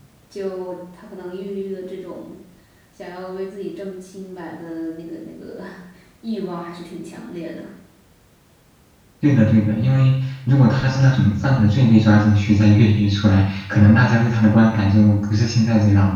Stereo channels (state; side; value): identical; both; correlation 1.00